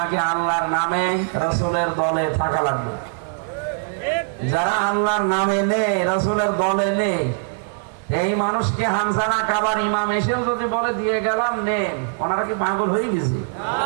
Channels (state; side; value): silent; left; 64 dB below the other